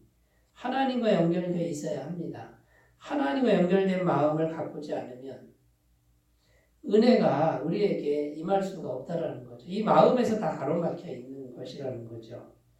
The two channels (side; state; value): both; identical; correlation 1.00